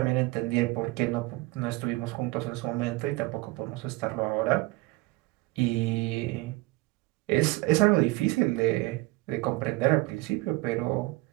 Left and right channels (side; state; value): left; quieter; 21.4 dB